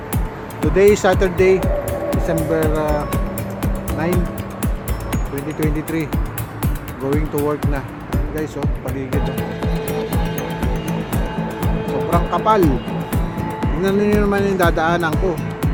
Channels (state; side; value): identical; both; correlation 1.00